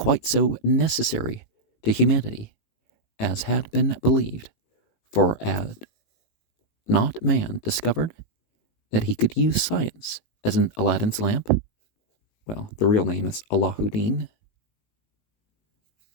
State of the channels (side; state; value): right; late; 18 ms